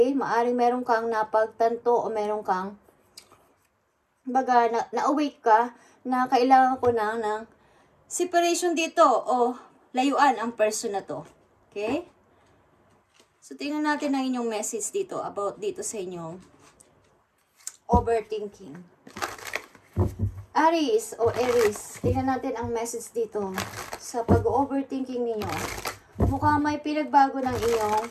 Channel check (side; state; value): both; identical; correlation 1.00